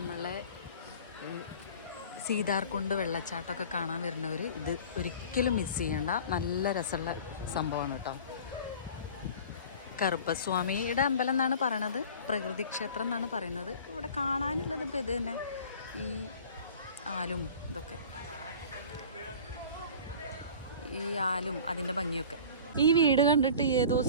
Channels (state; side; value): inverted; both; correlation -0.42